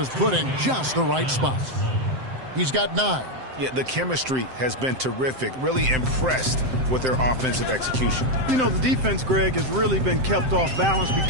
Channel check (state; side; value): late; left; 7.7 ms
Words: put in just the right spot. He's got 9. Yeah, the chemistry has been terrific. Really impressed with their offensive execution. You know, the defense, Greg, has really been kept off balance